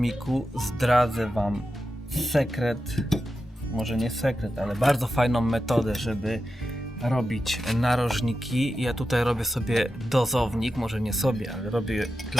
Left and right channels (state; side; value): normal; both; correlation 0.90